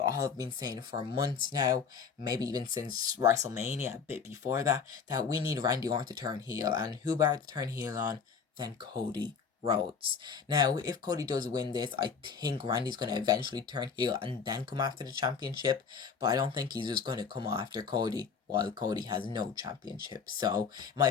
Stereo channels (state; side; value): quieter; right; 6.0 dB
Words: been saying for months now, maybe even since WrestleMania, a bit before that we need Randy Orton to turn heel, and who better to turn heel on than Cody Rhodes. Now, if Cody does win this, I think Randy's going to eventually turn heel and then come after the championship, but I don't think he's just going to come after Cody while Cody has no championship. So, in my